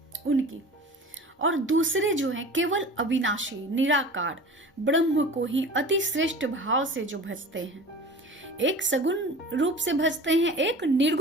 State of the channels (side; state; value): both; normal; correlation 0.38